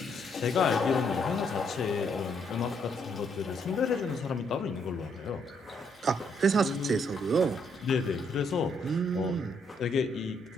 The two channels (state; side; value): normal; both; correlation 0.72